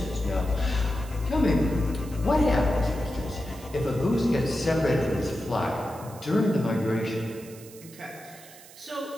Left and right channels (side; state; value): right; noise; hiss, 20 dB below the sound